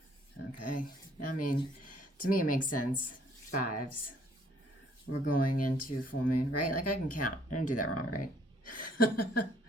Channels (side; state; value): both; normal; correlation 0.62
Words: Okay, I mean, to me it makes sense. Fives. We're going into full moon, right? Like I can count. I didn't do that wrong, right?